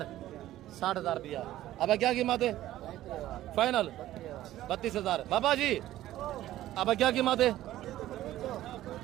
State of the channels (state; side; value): quieter; left; 14.2 dB